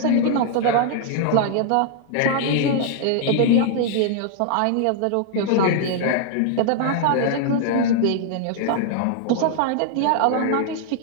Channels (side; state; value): both; different; correlation 0.00